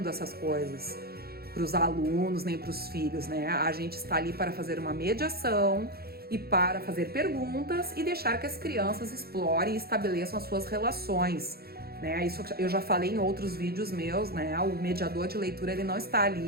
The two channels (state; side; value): late; left; 0.45 ms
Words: essas coisas para os alunos, nem para os filhos, né? A gente está ali para fazer uma mediação e para fazer perguntas e deixar que as crianças explorem e estabeleçam as suas relações, né? Isso eu já falei em outros vídeos meus, né? O mediador de leitura, ele não está